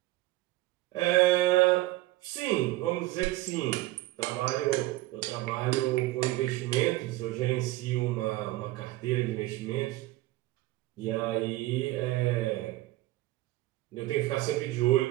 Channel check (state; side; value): quieter; left; 18.0 dB